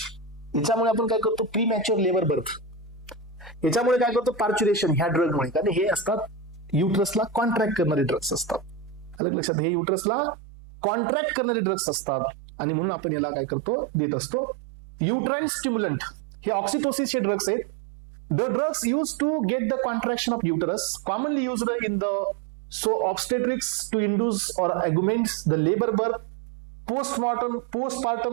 याच्यामुळे आपण काय करतो, प्रीमॅच्युअर लेबर बर्थ. याच्यामुळे काय करतो, पार्च्युरेशन. ह्या ड्रगमुळे, कारण हे असतात युटरसला कॉन्ट्रॅक्ट करणारे ड्रग्स असतात. अलग लक्षात, हे युटरसला कॉन्ट्रॅक्ट करणारे ड्रग्स असतात आणि म्हणून आपण याला काय करतो, देत असतो युटराईन स्टिम्युलंट. हे ऑक्सिटोसिसचे ड्रग्स आहेत. The drugs use to get the contraction of uterus, commonly used in the obstetrics to induce or augment the labor birth,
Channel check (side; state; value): left; drops out; at 9.2 s